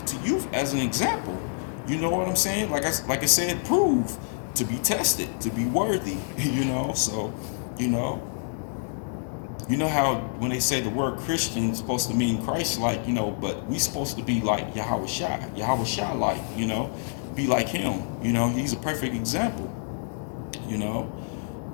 to you as an example. You know what I'm saying? Like I said, prove to be tested, to be worthy, So, how when they say the word Christian is supposed to mean Christ-like, but we supposed to be like Yahweh like, be like him, he's a perfect example,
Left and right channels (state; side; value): silent; right; digital silence